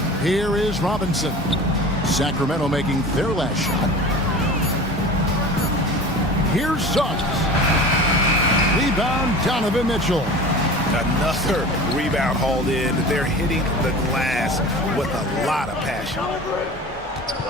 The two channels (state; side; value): normal; both; correlation 0.38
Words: Here is Robinson. Sacramento making their last shot. Here's Suggs. Rebound, Donovan Mitchell. Another rebound hauled in. They're hitting the glass with a lot of passion.